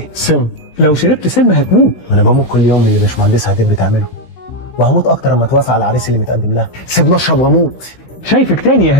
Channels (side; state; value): right; late; 16 ms